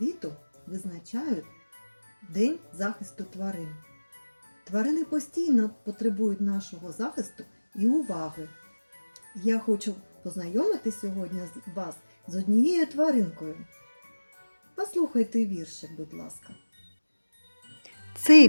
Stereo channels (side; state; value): both; inverted; correlation -1.00